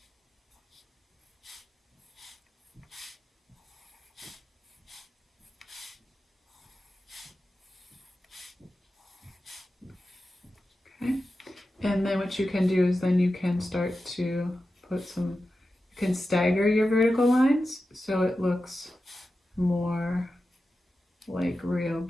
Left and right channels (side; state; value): both; normal; correlation 0.92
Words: Okay. And then what you can do is then you can start to put some, you can stagger your vertical lines so it looks more like real